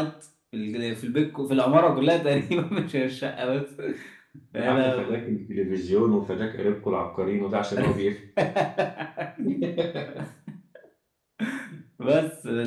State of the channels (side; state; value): both; identical; correlation 1.00